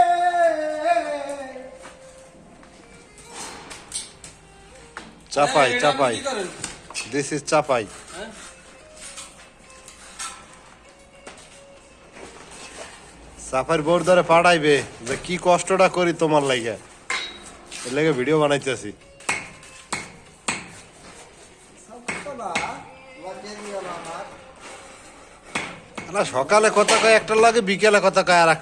চাপাই চাপাই, this is Chapai. চাপাইর bore ধরে পাঠাইবে যে কি কষ্টটা করি তোমার লাগে, এর লাগে ভিডিও বানাইতেছি। সকালে কথা কয় একটার লাগে, বিকেলে কথা কয় আর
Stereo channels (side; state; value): both; identical; correlation 1.00